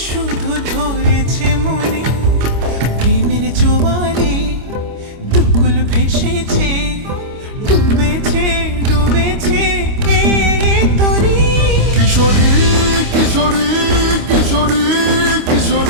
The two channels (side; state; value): left; late; 25 ms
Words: শুধু ধরেছে মনে। প্রেমের জোয়ারে দুকুল ভেসেছে, ডুবেছে ডুবেছে এ তরি। কিশোরী কিশোরী কিশোরী